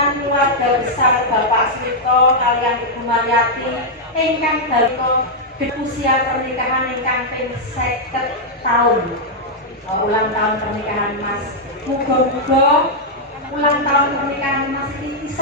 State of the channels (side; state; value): both; normal; correlation -0.04